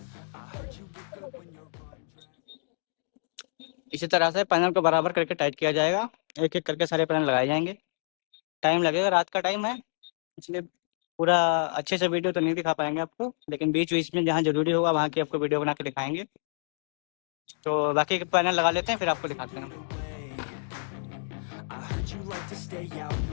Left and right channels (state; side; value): silent; right; digital silence